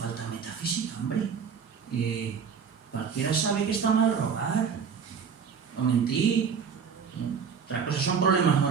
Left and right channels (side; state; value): left; quieter; 6.5 dB